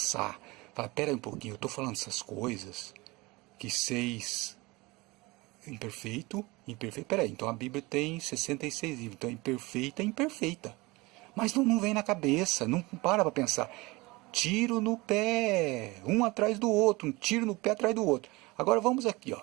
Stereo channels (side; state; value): left; quieter; 23.0 dB